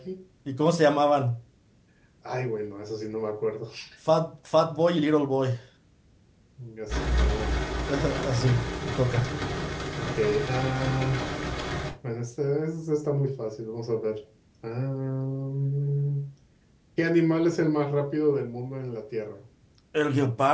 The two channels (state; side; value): identical; both; correlation 1.00